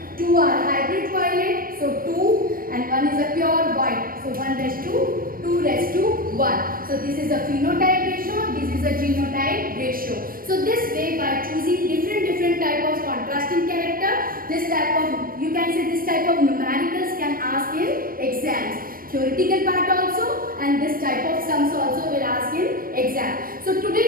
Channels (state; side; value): late; left; 0.41 ms